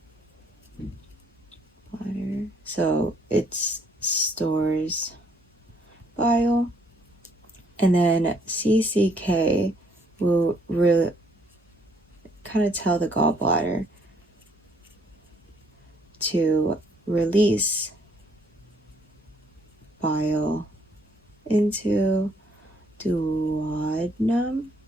So it stores bile. And then CCK will really kind of tell the gallbladder to release bile into duodenum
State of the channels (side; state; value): both; normal; correlation 0.66